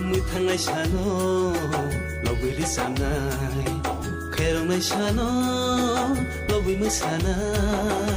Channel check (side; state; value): both; identical; correlation 1.00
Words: मुथांनाय सानो लबैरि सामनाय खैरावनाय सानो लबै